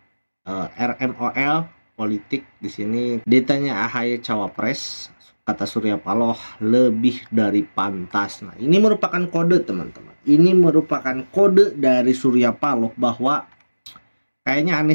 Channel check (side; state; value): both; inverted; correlation -1.00